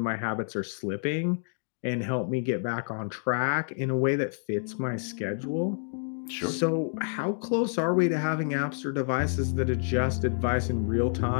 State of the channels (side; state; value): right; silent; 59 dB below the other